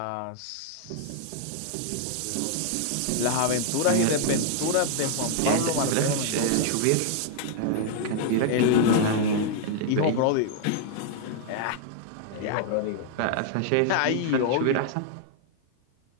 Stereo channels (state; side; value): different; both; correlation 0.00